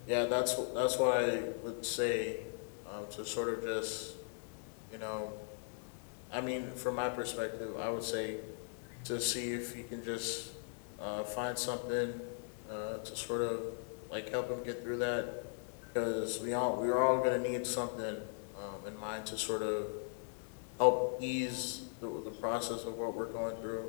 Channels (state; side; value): silent; right; digital silence